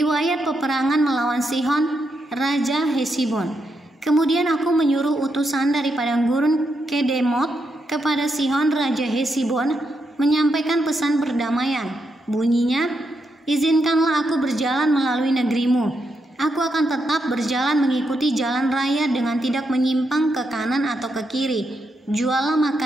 peperangan melawan Sihon, Raja Hesibon. Kemudian aku menyuruh utusan dari padang gurun Kedemot kepada Sihon Raja Hesibon menyampaikan pesan perdamaian. Bunyinya, izinkanlah aku berjalan melalui negerimu. Aku akan tetap berjalan mengikuti jalan raya dengan tidak menyimpang ke kanan atau ke kiri. Juallah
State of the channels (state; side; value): normal; both; correlation 0.82